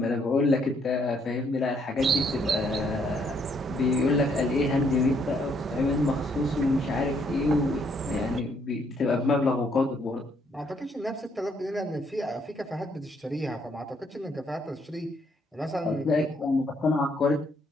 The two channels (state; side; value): normal; both; correlation 0.70